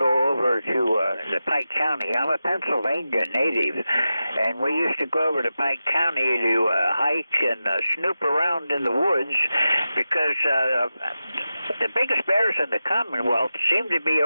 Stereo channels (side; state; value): both; inverted; correlation -0.92